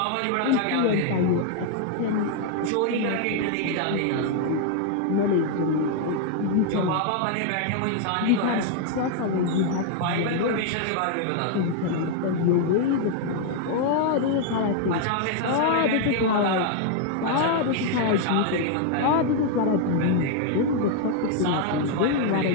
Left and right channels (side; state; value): both; different; correlation 0.00